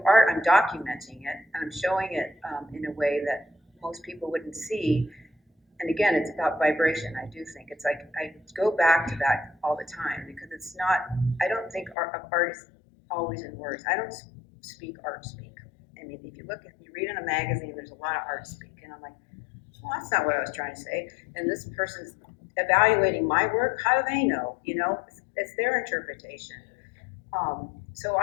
art, I'm documenting it, and I'm showing it in a way that most people wouldn't see. And again, it's about vibration. I do think it's like I go back to that all the time, because it's not. I don't think art is always in words. I don't speak art speak. I mean, if you read in a magazine, there's a lot of art speak, and I'm like, well, that's not what I was trying to say. And this person's evaluating my work. How do they know? It's their interpretation. So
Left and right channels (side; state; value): right; drops out; at 12.0 s